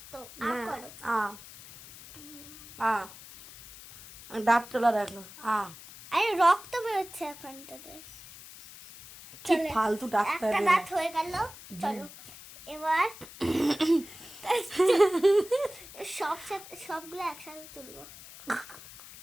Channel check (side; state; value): left; noise; hiss, 17 dB below the sound